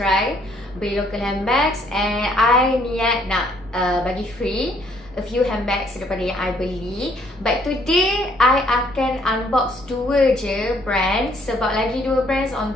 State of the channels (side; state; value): both; normal; correlation 0.65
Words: beli local handbags. And I niat nak bagi free a few handbags daripada yang I beli. But today I akan unbox dua je brands, sebab lagi dua brands on